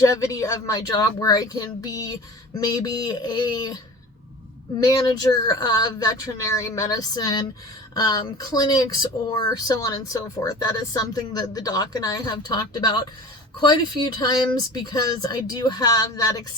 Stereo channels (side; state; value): both; normal; correlation 0.38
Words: of my job, where I can be maybe a manager of veterinary medicine clinics, or so on and so forth. That is something that the doc and I have talked about quite a few times, because I do have that